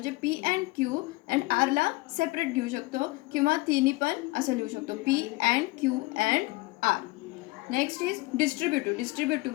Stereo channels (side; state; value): right; quieter; 22.3 dB